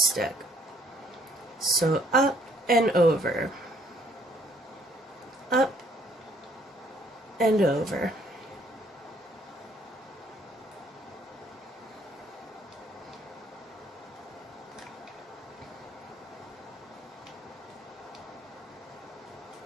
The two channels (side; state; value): both; normal; correlation 0.62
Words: So up and over. Up and over.